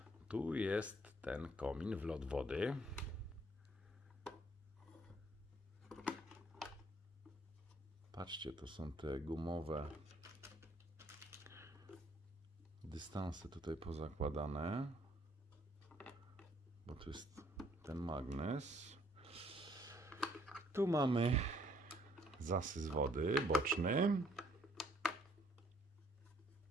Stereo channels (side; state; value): both; normal; correlation 0.64